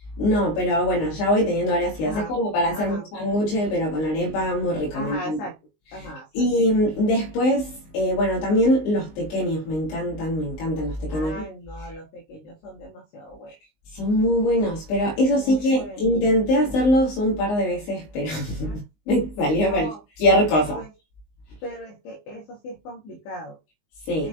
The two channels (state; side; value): late; right; 19 ms